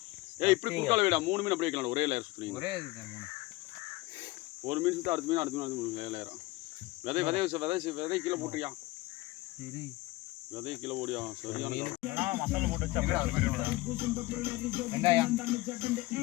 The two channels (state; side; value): quieter; right; 19.8 dB